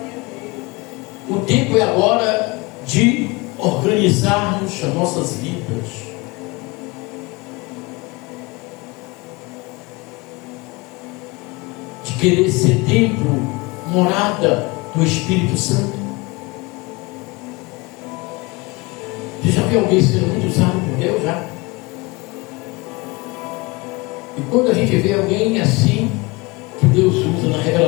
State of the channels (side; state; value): right; quieter; 24.9 dB